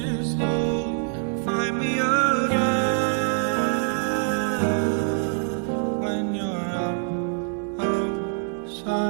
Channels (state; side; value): silent; left; 62 dB below the other